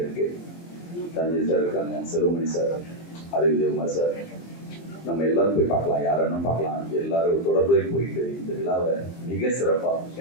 இருக்கு. கலைஞர் சார் இருக்காங்க, செல்வமணி சார், அறிவியல் சார், நம்ம எல்லாரும் போய் பார்க்கலாம், யாரும் பார்க்கலாம். எல்லாரும் தொடர்பு போயிட்டு இந்த விழாவை மிக சிறப்பாக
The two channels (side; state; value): right; late; 23 ms